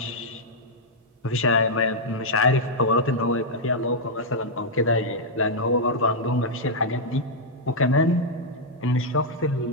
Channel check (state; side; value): normal; both; correlation -0.05